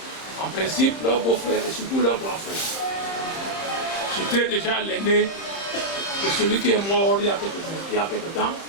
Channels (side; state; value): right; late; 30 ms